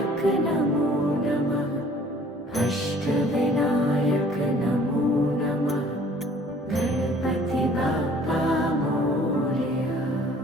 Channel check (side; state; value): both; normal; correlation 0.54